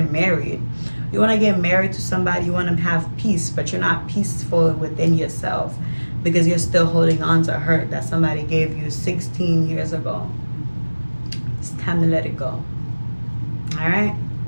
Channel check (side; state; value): both; inverted; correlation -1.00